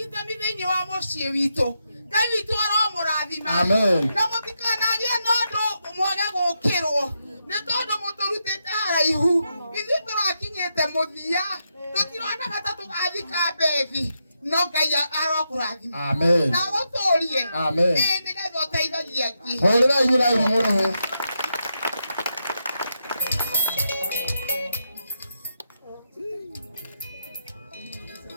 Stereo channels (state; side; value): inverted; both; correlation -0.83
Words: thĩinĩ wa mũciĩ witũ Ngai witũ aromũrathima. Amen. Na mũtikanagĩe na ũndũ mwage gũkĩrwo nĩ tondũ mũtũrutĩte haraihu ithuĩ tũrakinyĩte mũthia tũtirona ta tũgathika mbethi no Ngai arokũrathima. Amen. Na gũtũũrie Amen. nĩgetha ũteithagia angĩ. Hũrĩra igũrũ mũrũhũ.